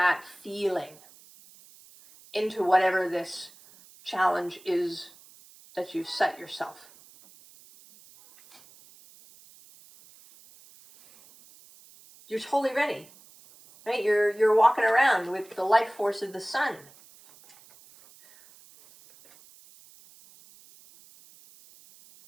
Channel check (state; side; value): noise; right; hiss, 24 dB below the sound